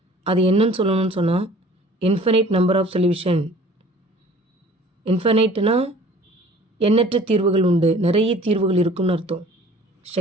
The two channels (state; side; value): normal; both; correlation 0.49